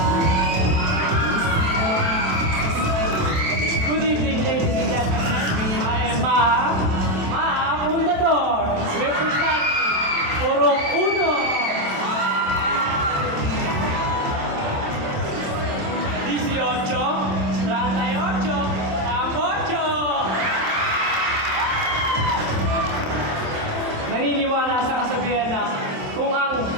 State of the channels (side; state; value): left; late; 27 ms